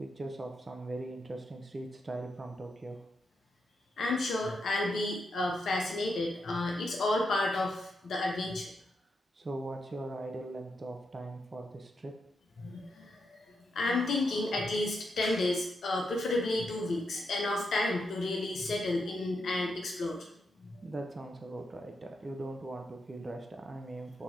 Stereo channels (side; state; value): both; normal; correlation 0.83